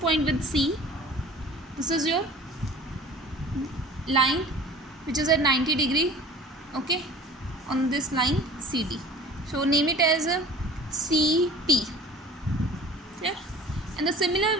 with C. This is your line which is at 90 degree. Okay, on this line CD. So name it as a CP. And the similar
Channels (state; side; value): normal; both; correlation 0.44